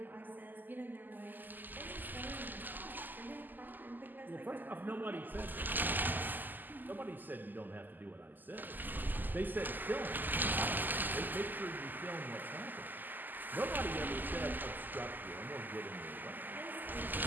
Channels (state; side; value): late; left; 0.087 ms